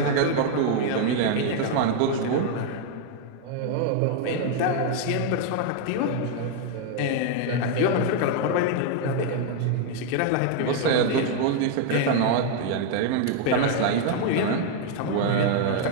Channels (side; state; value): both; different; correlation 0.00